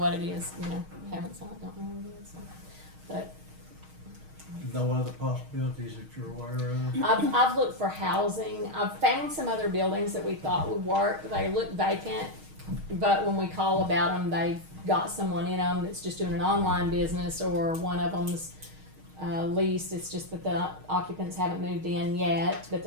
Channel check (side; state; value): left; late; 6.4 ms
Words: it is, haven't saw it, don't know what it is, so. But No other possibilities that you're aware of? I've looked for housing, I've found some other buildings that we thought would work, they look vacant, but when we call about them, they've got someone in them that's just doing an online business, or one of them's leased, it's just that the occupants haven't moved in yet, but